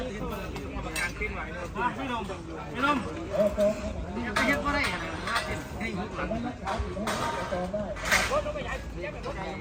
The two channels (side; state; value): both; identical; correlation 1.00